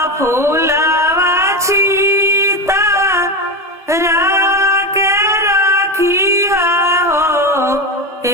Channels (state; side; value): normal; both; correlation 0.17